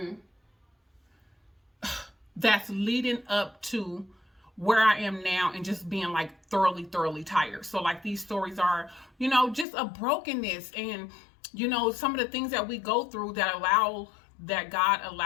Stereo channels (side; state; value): right; drops out; at 9.7 s